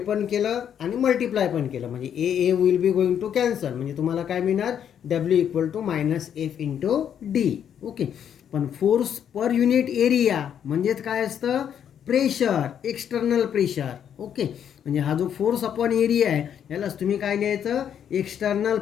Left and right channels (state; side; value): quieter; right; 8.9 dB